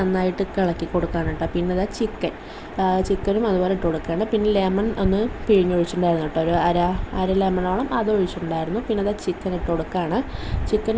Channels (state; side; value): identical; both; correlation 1.00